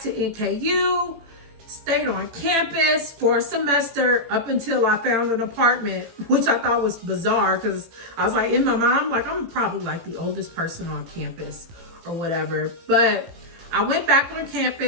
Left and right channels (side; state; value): left; late; 18 ms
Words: to NKU, stayed on campus for a semester up until I found an apartment, which I thought was bizarre because I was like, in my mind, I'm like, I'm probably like the oldest person on campus or whatever. But I went back on